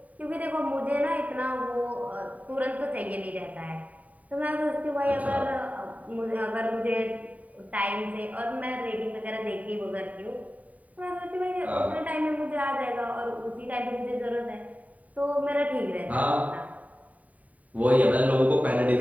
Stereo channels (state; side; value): late; left; 0.071 ms